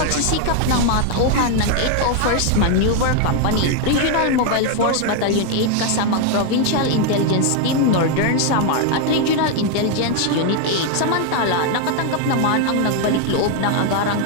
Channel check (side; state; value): both; different; correlation 0.01